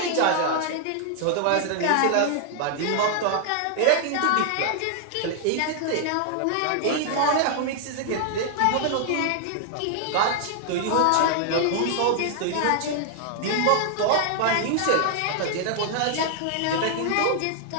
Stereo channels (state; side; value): different; both; correlation 0.00